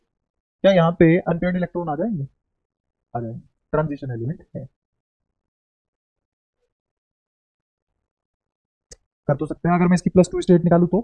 यहाँ पे अनपेयर्ड इलेक्ट्रॉन आ जाएंगे? आ जाएंगे, ट्रांजिशन एलिमेंट है। कर तो सकते हैं, अगर मैं इसकी +2 स्टेट निकालूं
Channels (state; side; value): identical; both; correlation 1.00